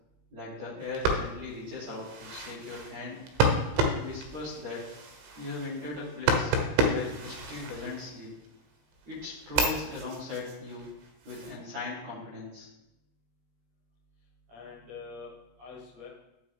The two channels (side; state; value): left; late; 17 ms